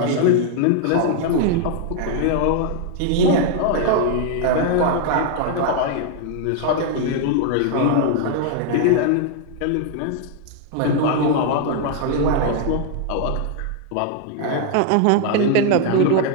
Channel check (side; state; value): both; different; correlation 0.00